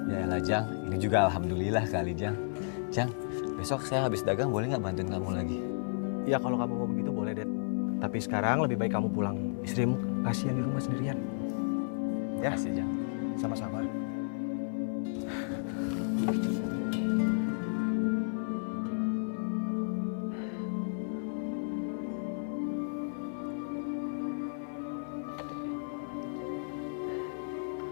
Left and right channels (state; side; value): silent; right; 56 dB below the other